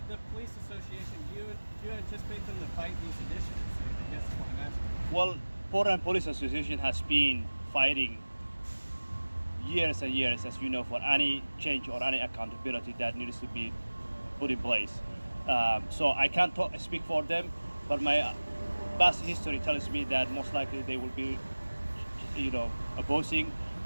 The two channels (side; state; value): both; inverted; correlation -1.00